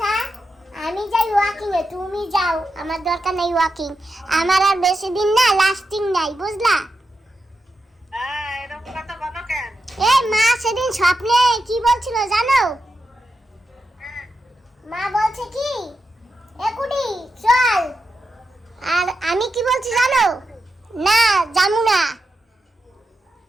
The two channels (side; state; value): both; normal; correlation 0.88